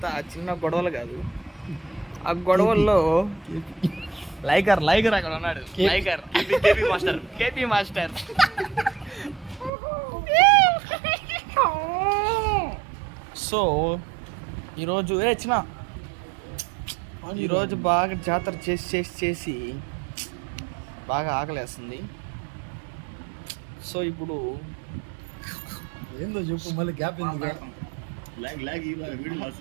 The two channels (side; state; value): left; drops out; at 9.7 s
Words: చిన్న గొడవలు కాదు, ఆ గొడవల్లో లైకర్ అక్కడ ఉన్నాడు. లైకర్ కేపీ మాస్టర్ సో ఈరోజు ఈరోజు బాగా జాతర చేసి బాగా ఆకలేస్తుంది. సో ఇప్పుడు ఏందో చెప్పు, మళ్ళీ గ్యాప్ ఎందుకు?